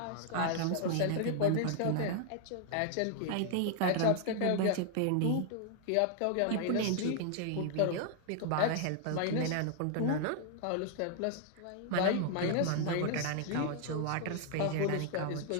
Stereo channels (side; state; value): both; different; correlation 0.00